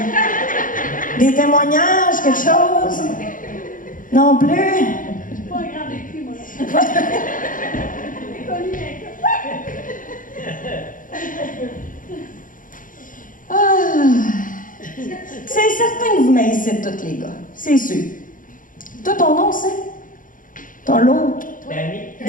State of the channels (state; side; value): late; right; 0.39 ms